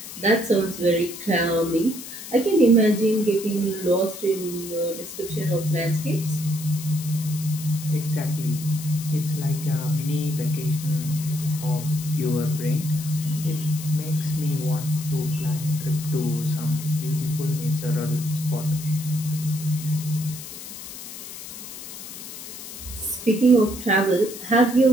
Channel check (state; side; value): noise; left; hiss, 11 dB below the sound